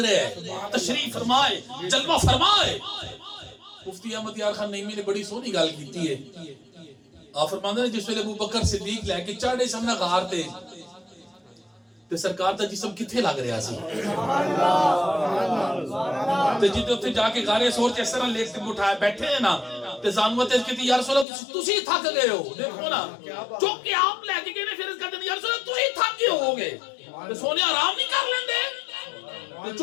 ہیں, تشریف فرمائے, جلوہ فرمائے. مفتی احمد یار خان نعیمی نے بڑی سونی گل کیتی ہے. آپ فرماندے ہیں جس ویلے ابو بکر صدیق لے کے چڑھے سامنے غار تے تے سرکار دا جسم کتھے لگ رہا سی, تے جتے اوتھے جا کے غار سور اس طرح لیٹ کے اٹھائے بیٹھے ہیں نا, تے زانوت اس کہتی یا رسول اللہ تسی تھک گئے ہو, دیکھو نا چوک کے آپ لے کے گئے نے, پھر اس کہتے ہیں یا رسول اللہ تسی تھک گئے ہو گے, تے سونے آرام نہیں کر لیندے, تے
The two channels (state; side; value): drops out; right; at 21.2 s